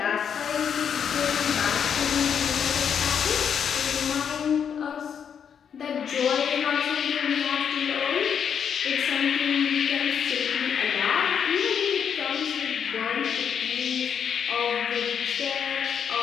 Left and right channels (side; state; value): right; quieter; 7.7 dB